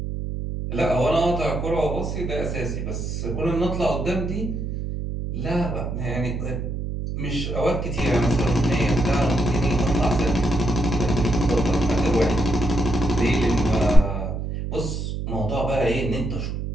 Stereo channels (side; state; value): right; noise; hum, 4 dB below the sound